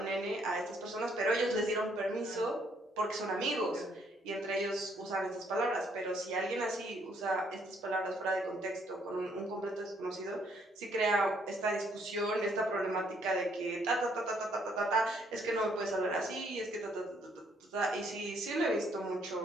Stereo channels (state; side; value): normal; both; correlation 0.68